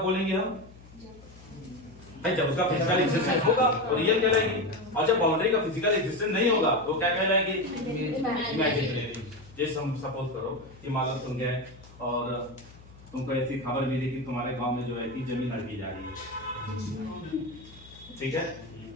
बोलेंगे हम? जब उसका फिजिकल एग्जिस्टेंस होगा तो रियल कहलाएगी, और जब बाउंड्री का फिजिकल एग्जिस्टेंस नहीं होगा तो क्या कहलाएगी? इमेजिनरी। जैसे हम सपोज करो कि मान लो तुम गए और तुमको ऐसी खबर मिली कि तुम्हारे गांव में जो है कि जमीन हड़पी जा रही है, ठीक है?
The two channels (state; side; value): noise; left; hum, 21 dB below the sound